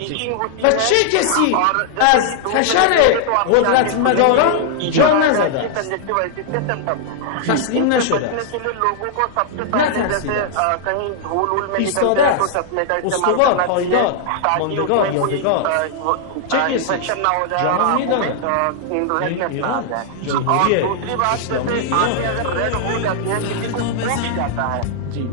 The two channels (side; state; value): both; different; correlation -0.01